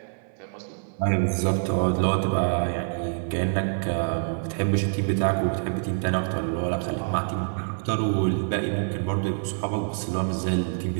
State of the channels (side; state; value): left; silent; 61 dB below the other